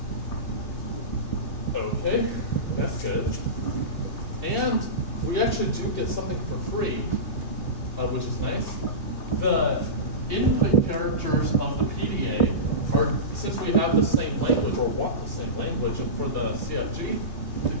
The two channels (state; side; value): late; right; 2.8 ms